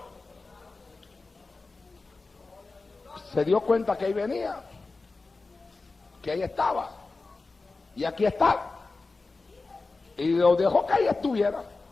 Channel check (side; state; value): right; quieter; 3.7 dB